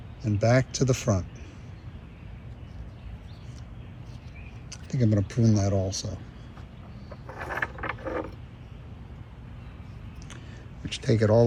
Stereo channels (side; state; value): both; identical; correlation 1.00